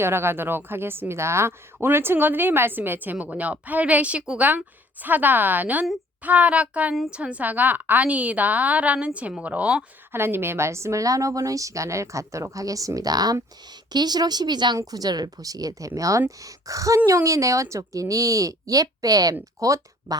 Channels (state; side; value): normal; both; correlation 0.57